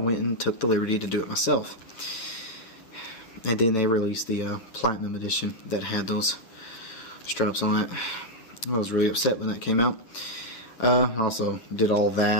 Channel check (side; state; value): right; late; 9.0 ms